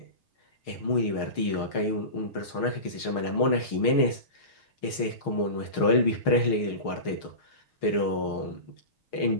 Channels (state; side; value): late; right; 6.4 ms